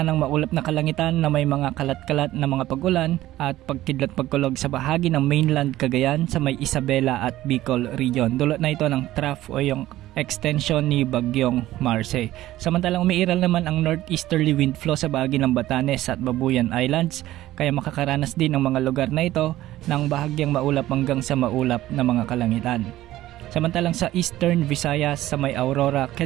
ng maulap na kalangitan na may mga kalat-kalat na mga pag-ulan at pagkidlat-pagkulog sa bahagi ng mainland Cagayan sa may Isabela at Bicol region. Dulot na ito ng trough o yung extension ni Bagyong Marce. Samantalang umiiral naman ang northeasterly wind flow sa bahagi ng Batanes at Babuyan Islands, kaya makakaranas din ang mga lugar na ito ng bahagyang maulap hanggang sa maulap na mga kalangitan. Samantalang sa Eastern Visayas sa may Aurora,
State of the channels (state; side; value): quieter; left; 15.2 dB